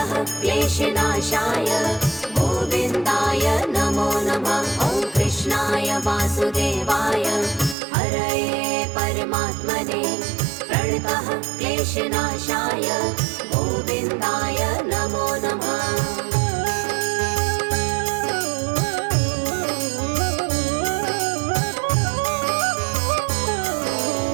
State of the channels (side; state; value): left; drops out; at 7.8 s